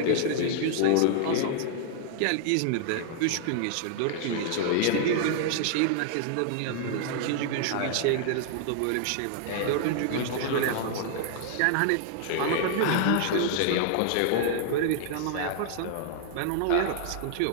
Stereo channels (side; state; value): both; different; correlation -0.01